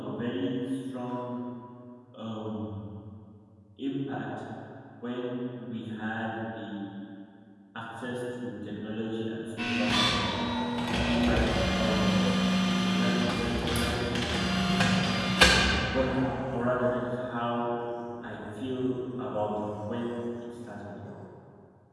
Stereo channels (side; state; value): both; identical; correlation 1.00